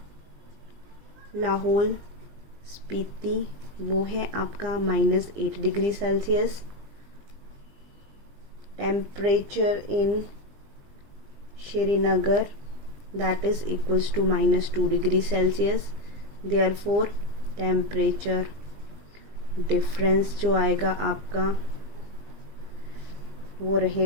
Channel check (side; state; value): left; late; 20 ms